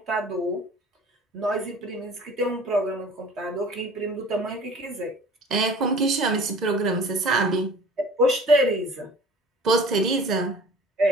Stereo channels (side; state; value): both; normal; correlation 0.45